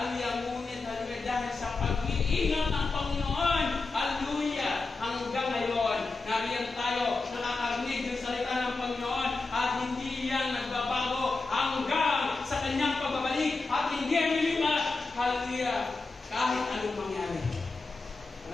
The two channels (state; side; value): quieter; right; 3.8 dB